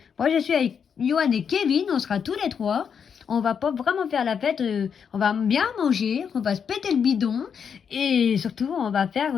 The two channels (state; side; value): quieter; right; 7.1 dB